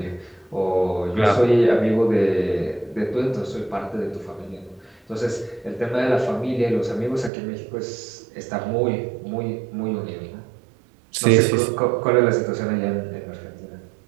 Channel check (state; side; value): drops out; left; at 7.3 s